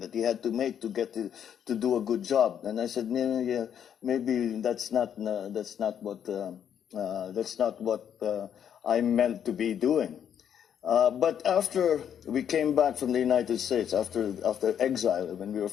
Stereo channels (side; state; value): right; quieter; 8.9 dB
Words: to get to do a good job. And I said, yeah, maybe that's not what I'm meant to be doing. But after we came back from the United States, after exile, when we were